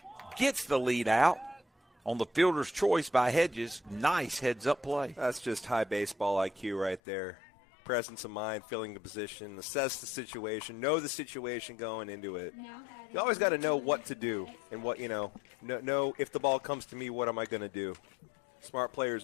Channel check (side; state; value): right; drops out; at 7.0 s